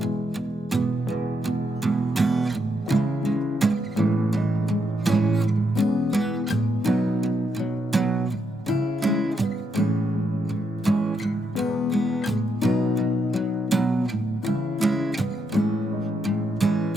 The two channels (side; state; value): both; normal; correlation 0.79